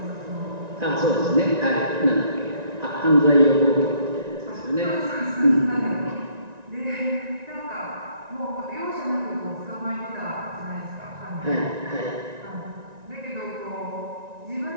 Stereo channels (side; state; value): left; late; 1.9 ms